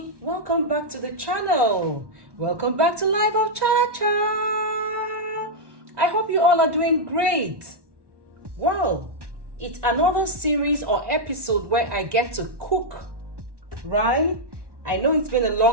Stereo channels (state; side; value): late; left; 1.1 ms